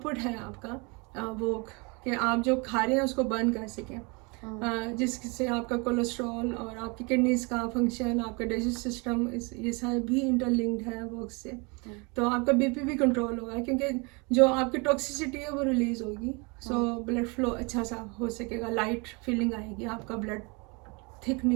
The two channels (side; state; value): left; quieter; 30.0 dB